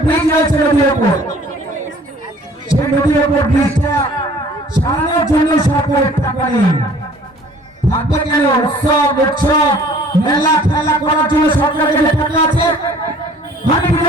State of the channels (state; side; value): normal; both; correlation 0.53